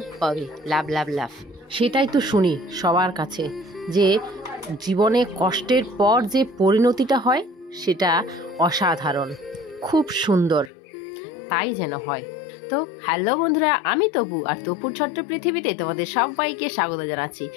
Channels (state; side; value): drops out; right; at 10.7 s